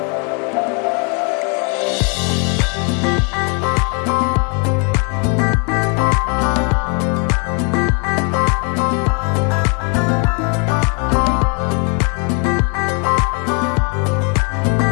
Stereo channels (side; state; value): right; quieter; 36.4 dB